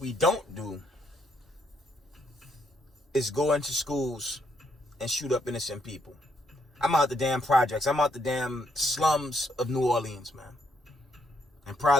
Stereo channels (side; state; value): both; normal; correlation 0.74